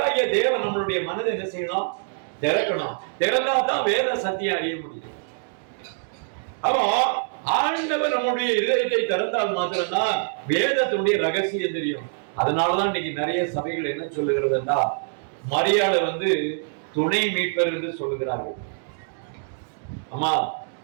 தேவன் நம்மளுடைய மனதை என்ன செய்யணும்? திறக்கணும். திறந்தா தான் வேத சத்தியம் அறிய முடியும். அப்போ ஆண்டவர் நம்முடைய இதயத்தை திறந்தால் மாத்திரம்தான் வேதத்தினுடைய ரகசியம் தெரியும். அதனாலதான் இன்னைக்கு நிறைய சபைகள் என்ன சொல்லுகிறதுன்னா மரியாதை துணை மீட்பர் என்று சொல்லுகிறார்கள். ஆமா,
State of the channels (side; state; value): left; silent; digital silence